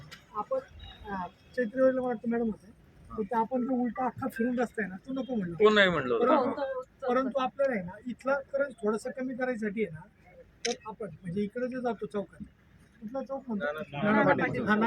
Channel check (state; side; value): identical; both; correlation 1.00